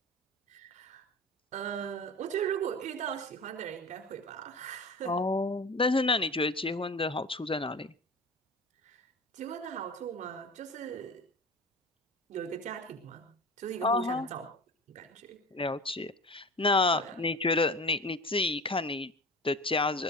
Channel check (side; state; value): both; normal; correlation 0.34